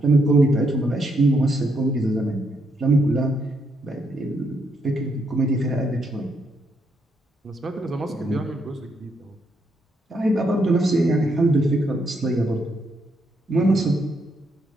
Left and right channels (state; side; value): normal; both; correlation 0.76